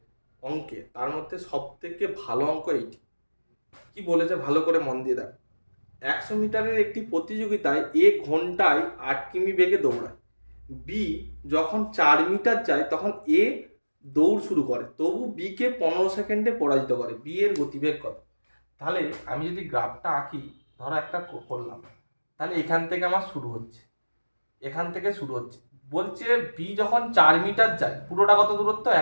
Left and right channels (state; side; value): inverted; both; correlation -1.00